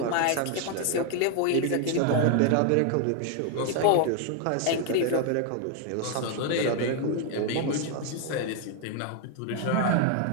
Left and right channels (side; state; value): both; different; correlation 0.01